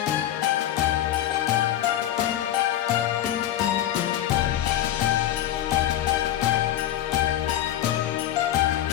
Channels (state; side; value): quieter; right; 12.3 dB